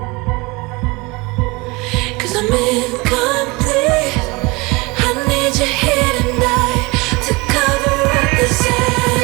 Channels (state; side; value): quieter; left; 24.9 dB